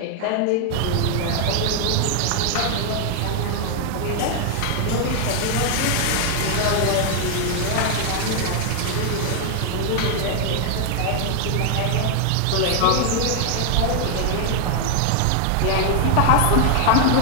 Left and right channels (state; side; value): different; both; correlation 0.00